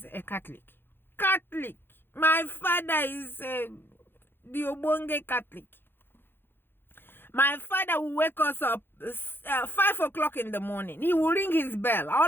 a Catholic. My father is the Obonge Catholic. My father will wake us up 5 o'clock in the morning. He will ring his bell.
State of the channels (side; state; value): right; late; 0.10 ms